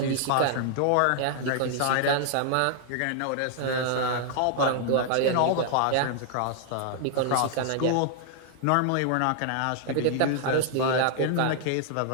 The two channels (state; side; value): different; both; correlation -0.01